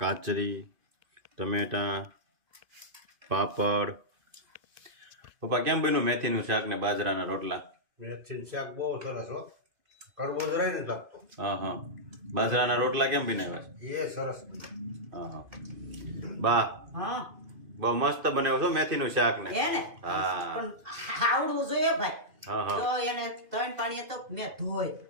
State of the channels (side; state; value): left; late; 2.5 ms